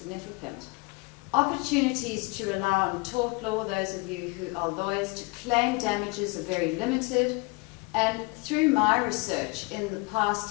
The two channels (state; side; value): quieter; right; 25.9 dB